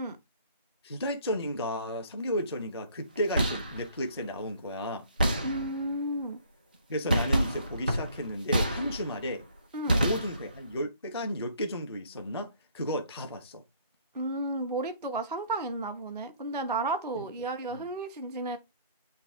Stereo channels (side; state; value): both; inverted; correlation -0.59